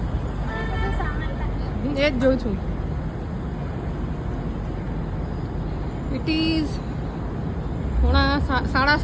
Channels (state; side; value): identical; both; correlation 1.00